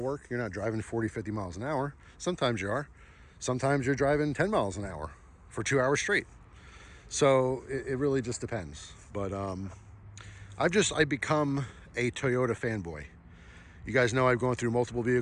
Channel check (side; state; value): both; identical; correlation 1.00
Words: work. You're not driving 40, 50 miles an hour. Sometimes you are. Sometimes you're driving 10 miles an hour for 2 hours straight. So it really just depends. But I've become a Toyota fanboy. You guys know I've gone through multiple